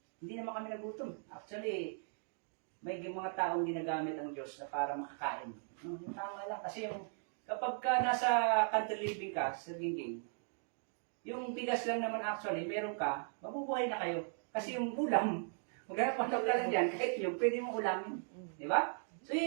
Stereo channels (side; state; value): left; silent; 52 dB below the other